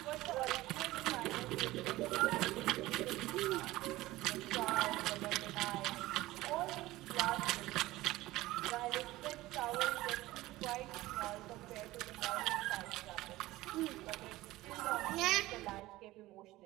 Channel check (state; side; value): quieter; left; 17.8 dB